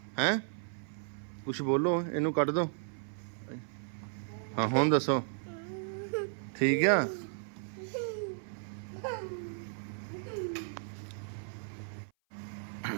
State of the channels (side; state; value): left; silent; 55 dB below the other